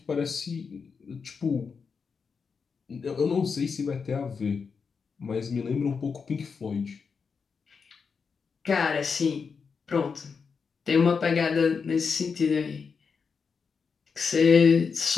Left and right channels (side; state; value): right; quieter; 5.6 dB